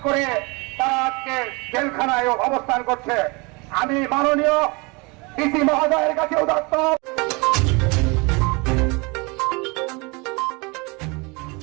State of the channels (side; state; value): left; quieter; 28.0 dB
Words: করে তারা আজকে জেলখানায় অবস্থান করছে। আমি মাননীয় ডিসি মহোদয়ের কাছে উদাত্ত